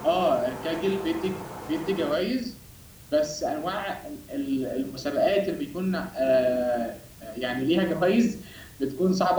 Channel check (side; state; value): both; identical; correlation 1.00